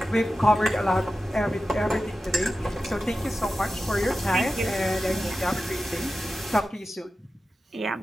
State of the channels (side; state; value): both; normal; correlation 0.93